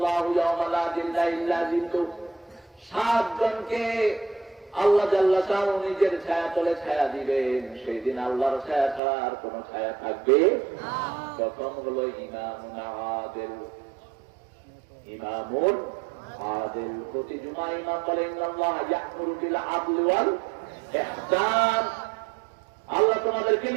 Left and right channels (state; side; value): drops out; left; at 9.0 s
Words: জনকে আল্লাহ জাল্লা শাআনহু নিজের ছায়া তলে ছায়া দিবেন। সেই দিন আল্লাহর ছায়া ছাড়া আর কোন ছায়া থাকবে? কত প্রথম হলো ইমামুন আদিল। ইমামুন আদিল, প্রতি জুমা ইমাম বলে ইন্নাল্লাহ ইয়া'মুরু বিল আদলি ওয়াল ইহসান। আল্লাহ তোমাদেরকে